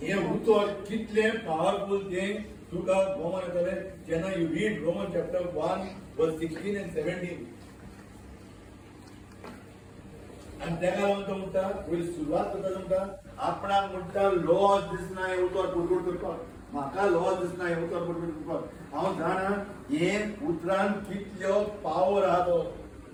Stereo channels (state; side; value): identical; both; correlation 1.00